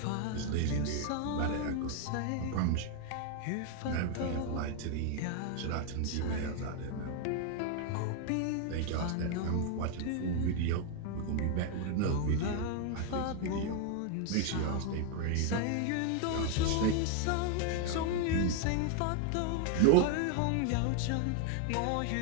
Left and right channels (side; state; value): both; different; correlation 0.01